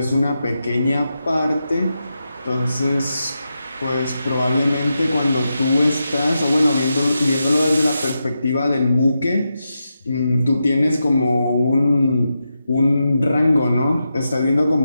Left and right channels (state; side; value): inverted; both; correlation -0.88